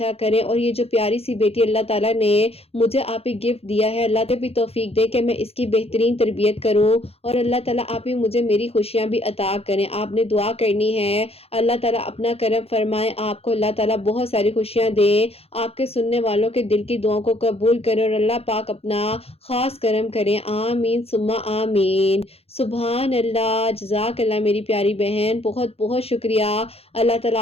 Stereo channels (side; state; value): right; late; 0.29 ms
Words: کرے، اور یہ جو پیاری سی بیٹی اللہ تعالیٰ نے مجھے آپ ہی گفٹ دیا ہے، اللہ تعالیٰ بھی توفیق دے کہ میں اس کی بہترین تربیت کروں، اور اللہ تعالیٰ آپ ہی مجھے میری خوشیاں بھی عطا کریں۔ آپ نے دعا کرنی ہے، اللہ تعالیٰ اپنا کرم فرمائے، آپ کو اللہ تعالیٰ بہت ساری خوشیاں دے، آپ کے سننے والوں کے دل کی دعاؤں کو قبول کرے اور اللہ پاک اپنا خاص کرم کریں، آمین ثم آمین۔ سبحان اللہ، جزاک اللہ میری پیاری بہن، بہت بہت شکریہ۔ اللہ تعالیٰ